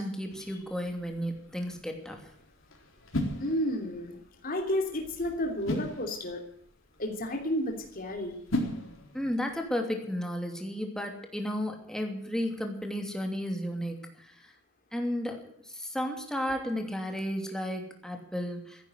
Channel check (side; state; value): both; normal; correlation 0.65